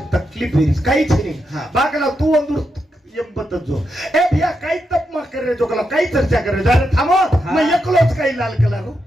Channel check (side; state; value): both; normal; correlation 0.84